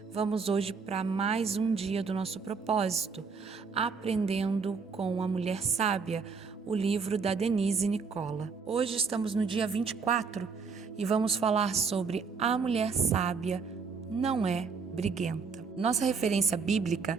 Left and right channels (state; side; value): quieter; left; 5.2 dB